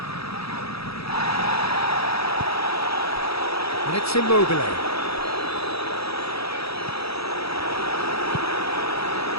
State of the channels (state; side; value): late; right; 0.77 ms